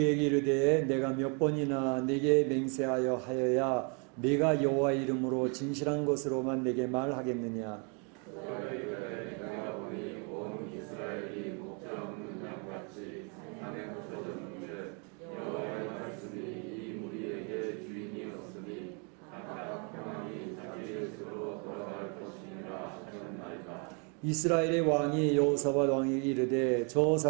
이르되 내가 몇 번이나 내게 맹세하여 하여야 내가 여호와 이름으로 진실한 것으로만 내게 말하겠느냐. 이스라엘의 왕이 여호사밧 왕에게 이르되 저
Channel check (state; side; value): quieter; left; 36.1 dB